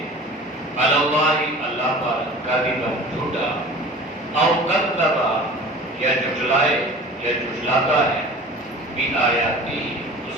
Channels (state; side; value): normal; both; correlation 0.41